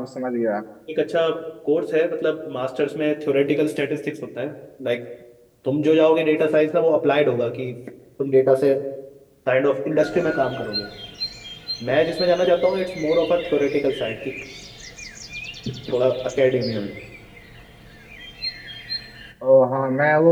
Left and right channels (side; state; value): both; identical; correlation 1.00